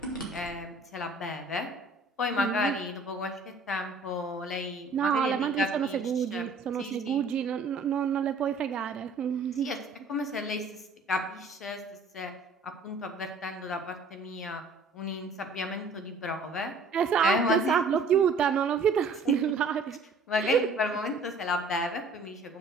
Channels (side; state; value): left; quieter; 3.4 dB